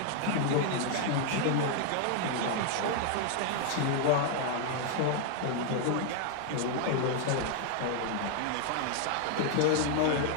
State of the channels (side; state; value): both; different; correlation 0.00